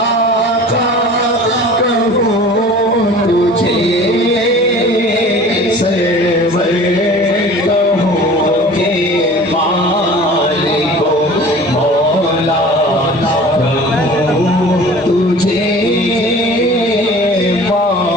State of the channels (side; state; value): both; normal; correlation 0.43